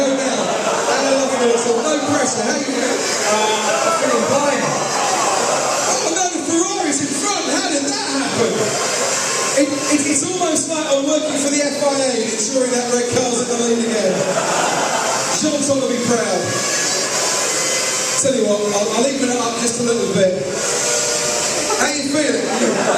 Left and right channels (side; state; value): both; identical; correlation 1.00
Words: all. No pressure. How you going? I'm feeling blind. Oh no, the Ferrari's in front. How did that happen? It's almost like I'm working for the FIA and ensuring that red car's in the lead again. Sean's going to be proud. Tell you what, I'll even it up just a little bit. How